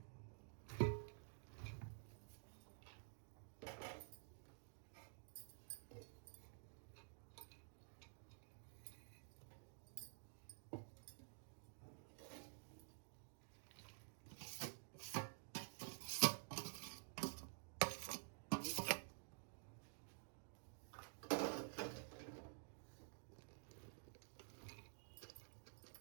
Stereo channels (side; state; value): left; silent; digital silence